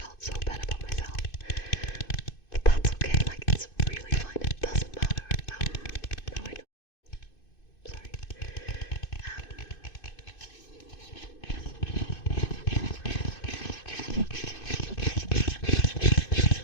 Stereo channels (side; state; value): right; late; 2.5 ms